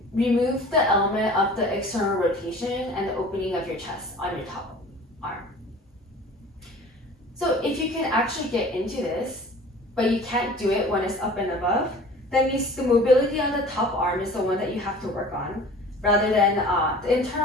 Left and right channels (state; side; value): normal; both; correlation 0.44